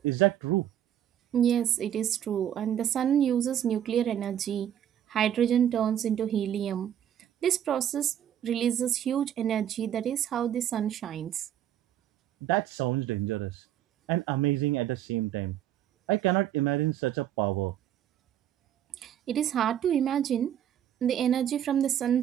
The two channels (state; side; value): quieter; left; 10.5 dB